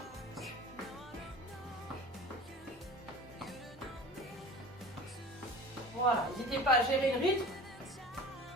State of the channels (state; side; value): normal; both; correlation 0.39